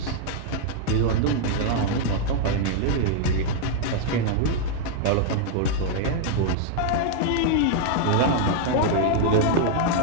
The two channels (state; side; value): different; both; correlation -0.01